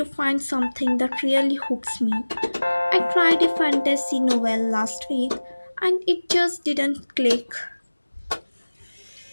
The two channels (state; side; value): inverted; both; correlation -1.00